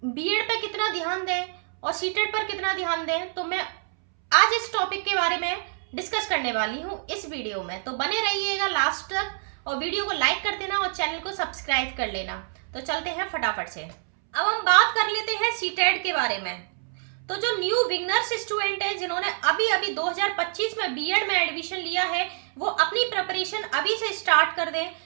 बीएड पे कितना ध्यान दें और सीटेट पर कितना ध्यान दें। तो मैं आज इस टॉपिक के बारे में डिस्कस करने वाली हूँ इस वीडियो में, तो बने रहिएगा लास्ट तक और वीडियो को लाइक कर देना और चैनल को सब्सक्राइब कर लेना। तो चलते हैं फटाफट से। अब हम बात कर लेते हैं सीटेट के बारे में। तो जो न्यू बिगनर्स स्टूडेंट है जिन्होंने अभी 2025 में बीएड में एडमिशन लिया है, वो अपनी प्रिपरेशन अभी से स्टार्ट कर दें,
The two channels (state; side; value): silent; left; 61 dB below the other